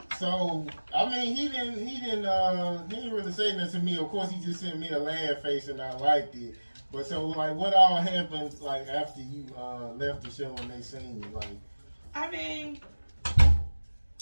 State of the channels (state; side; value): inverted; both; correlation -1.00